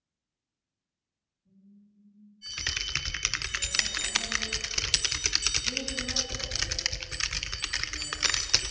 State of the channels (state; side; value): identical; both; correlation 1.00